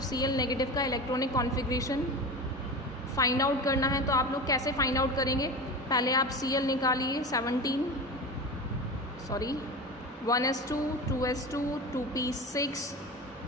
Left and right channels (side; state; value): both; normal; correlation 0.28